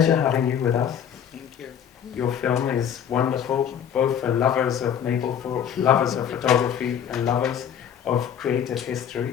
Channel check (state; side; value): quieter; right; 8.8 dB